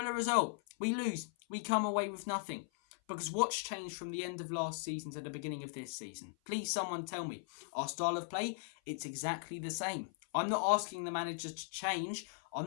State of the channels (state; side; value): silent; right; 52 dB below the other